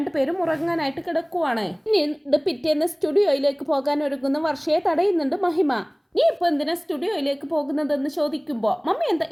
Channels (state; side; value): identical; both; correlation 1.00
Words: ഉറങ്ങാനായിട്ട് കിടക്കുവാണ്. ഇനി പിറ്റേന്ന് സ്റ്റുഡിയോയിലേക്ക് പോകാൻ ഒരുങ്ങുന്ന വർഷയെ തടയുന്നുണ്ട് മഹിമ. നീ ഇപ്പൊ എന്തിനാ സ്റ്റുഡിയോയിലേക്ക് പോകുന്നതെന്ന് ചോദിക്കുമ്പോ മമ്മി എന്താ